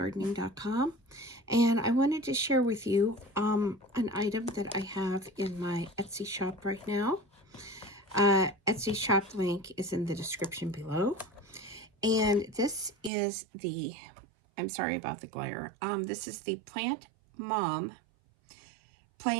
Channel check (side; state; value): left; drops out; at 13.1 s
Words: And I wanted to share with you an item that I have in my Etsy shop right now. Etsy shop link is in the description below. And this is the, I'm sorry about the glare, this is the Plant Mom